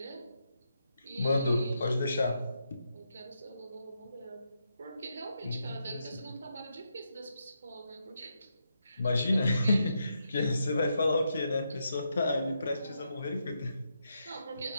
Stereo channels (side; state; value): both; inverted; correlation -0.82